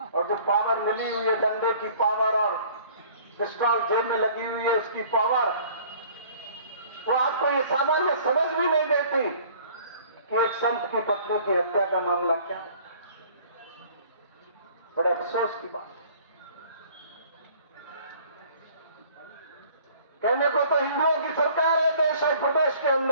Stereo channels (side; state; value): both; inverted; correlation -0.53